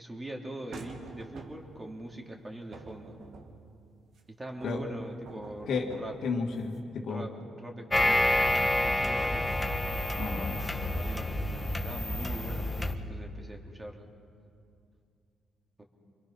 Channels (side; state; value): both; normal; correlation 0.92